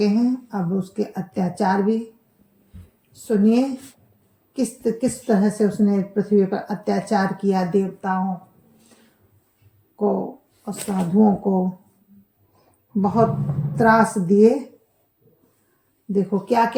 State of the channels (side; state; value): both; identical; correlation 1.00